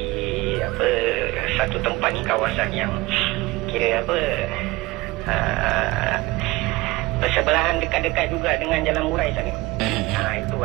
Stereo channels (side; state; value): left; quieter; 20.9 dB